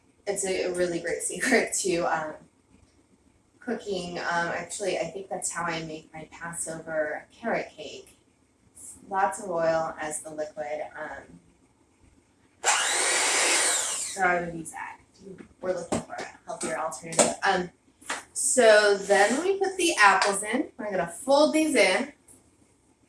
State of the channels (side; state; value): both; identical; correlation 1.00